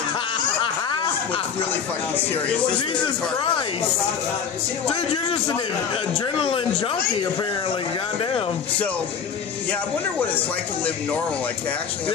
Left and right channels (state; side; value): quieter; right; 7.0 dB